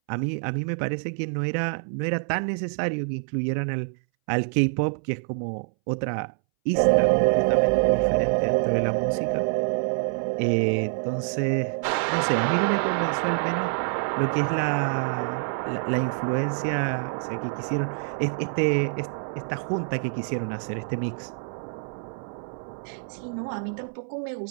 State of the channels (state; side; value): silent; left; 61 dB below the other